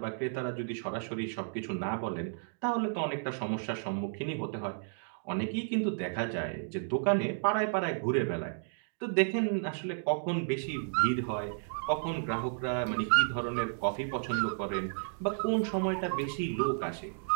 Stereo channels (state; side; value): silent; left; digital silence